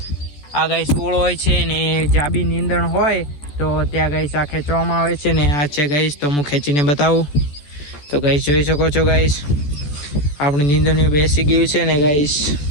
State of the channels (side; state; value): right; late; 14 ms